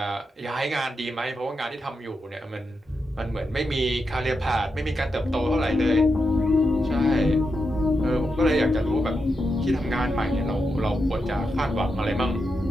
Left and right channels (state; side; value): normal; both; correlation 0.86